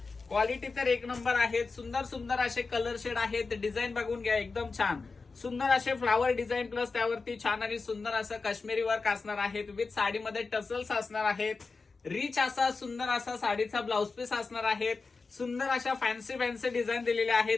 क्वालिटी तर एक नंबर आहेत. सुंदर सुंदर असे कलर शेड आहेत. डिझाईन बघून घ्या, एकदम छान सुंदर असे फ्लावर डिझाईन प्लस त्यावरती छान आणि सुंदर असं काश्मीरी वर्क असणार आहेत. विथ साडीमध्ये टसल्स असणार आहेत. रिच असा सुंदर असा साडीचा ब्लाउज पीस असणार आहेत. सुंदर अशा फॅन्सी फॅन्सी डिझाईन दिलेल्या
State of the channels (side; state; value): right; quieter; 4.2 dB